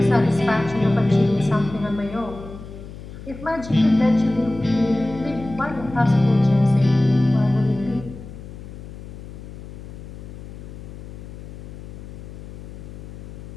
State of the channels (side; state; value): left; noise; hum, 13 dB below the sound